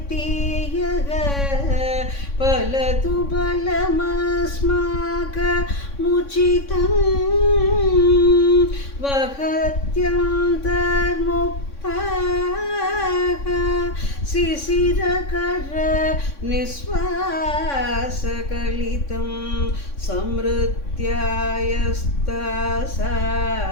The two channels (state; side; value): late; right; 3.6 ms